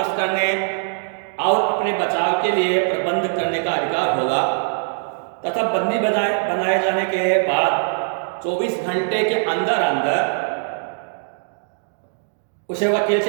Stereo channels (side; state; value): left; silent; digital silence